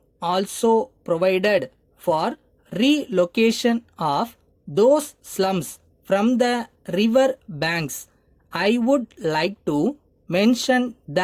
also provided for relocation of those slums from the river banks. I would like to mention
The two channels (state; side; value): identical; both; correlation 1.00